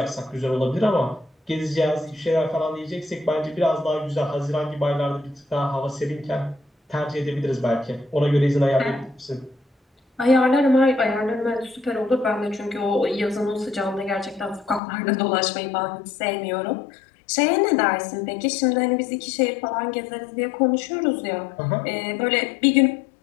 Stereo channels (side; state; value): right; drops out; at 14.8 s